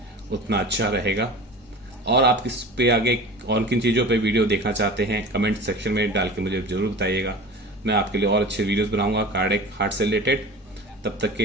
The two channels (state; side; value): normal; both; correlation 0.36